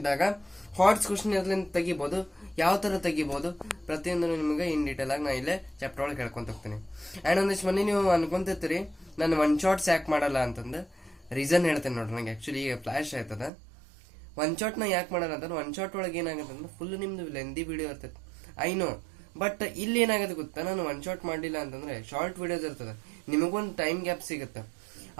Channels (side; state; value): left; drops out; at 13.5 s